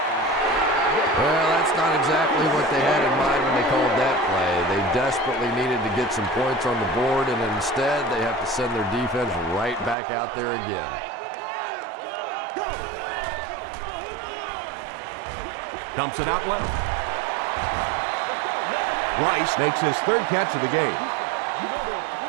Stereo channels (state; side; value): drops out; left; at 10.0 s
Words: Well, that's not exactly what they had in mind when they called that play. They desperately needed to get some points on the board, and instead they have to send their defense right back out there again. Dumps it out left. Rice makes his 3rd catch of the game.